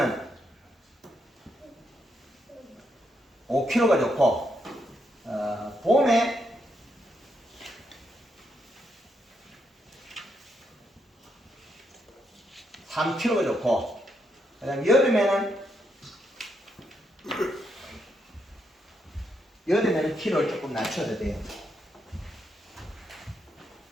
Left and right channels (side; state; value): both; normal; correlation 0.79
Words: 5kg가 좋고 봄에 3kg가 좋고 그다음 여름에는 키로를 조금 낮춰도 돼요.